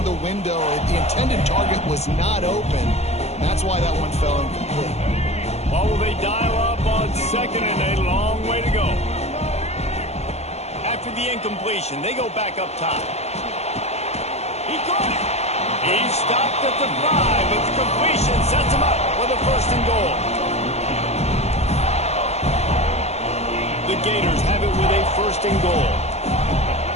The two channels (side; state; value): right; late; 0.31 ms